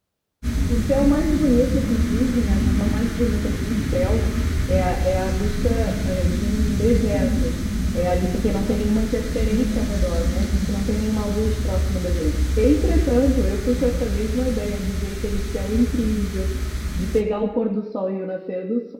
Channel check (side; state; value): both; identical; correlation 1.00